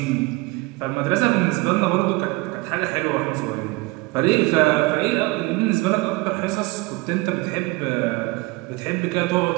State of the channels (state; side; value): quieter; left; 23.6 dB